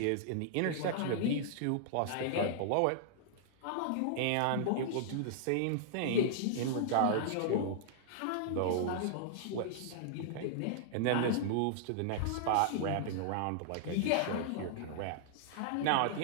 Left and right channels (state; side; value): different; both; correlation -0.01